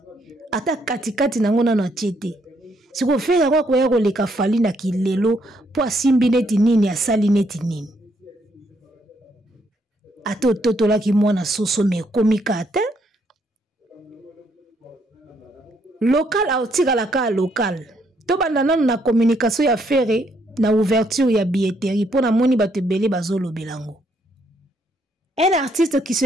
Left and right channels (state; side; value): normal; both; correlation 0.72